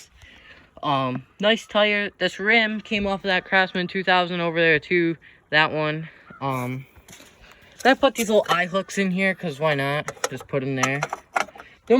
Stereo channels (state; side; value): identical; both; correlation 1.00